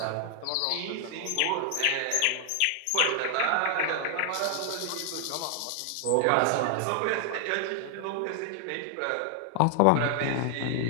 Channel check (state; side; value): different; both; correlation 0.00